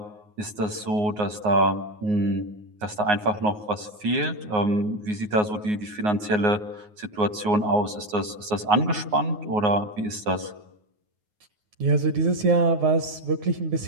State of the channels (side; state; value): left; late; 9.5 ms